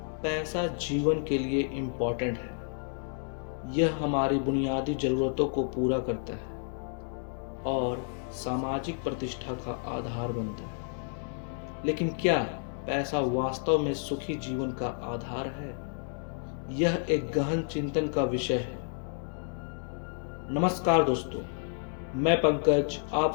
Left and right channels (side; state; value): right; silent; 57 dB below the other